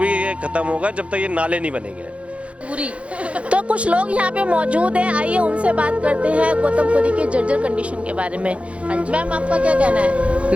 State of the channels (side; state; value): left; late; 0.062 ms